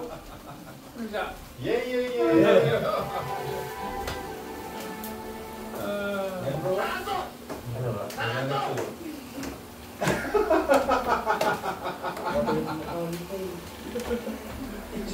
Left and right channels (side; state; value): both; identical; correlation 1.00